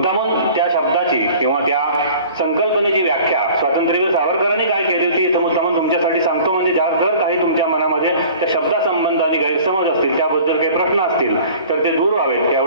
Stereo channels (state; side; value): inverted; both; correlation -0.46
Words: त्या शब्दाची किंवा त्या संकल्पनेची व्याख्या स्वातंत्र्यवीर सावरकरांनी काय केली होती इथं मुद्दामून तुमच्यासाठी सांगतो. म्हणजे जर काही तुमच्या मनामध्ये त्या शब्दासंबंधाने गैरसमज असतील, त्याबद्दल काही प्रश्न असतील तर ते दूर व्हावेत